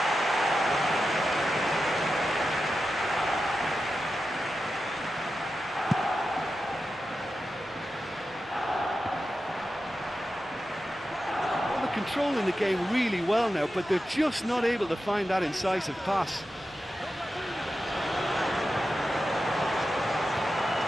Well, they're controlling the game really well now, but they're just not able to find that incisive pass.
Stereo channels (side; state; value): both; normal; correlation 0.91